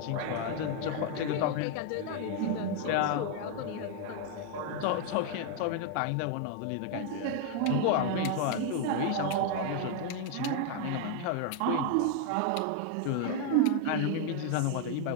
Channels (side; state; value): both; different; correlation 0.00